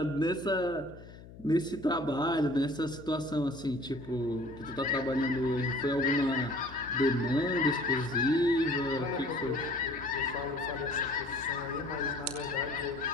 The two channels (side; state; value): left; noise; hum, 17 dB below the sound